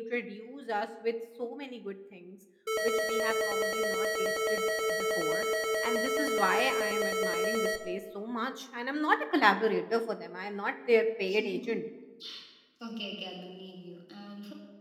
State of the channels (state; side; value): identical; both; correlation 1.00